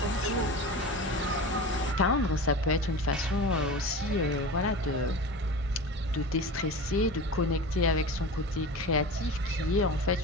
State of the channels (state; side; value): normal; both; correlation 0.31